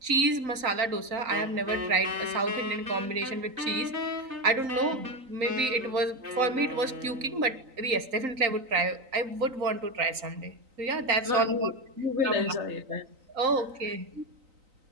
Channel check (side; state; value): left; late; 3.9 ms